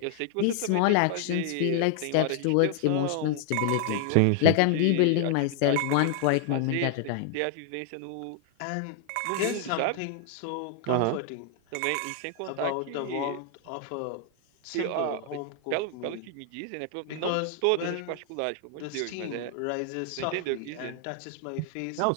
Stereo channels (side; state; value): both; different; correlation 0.00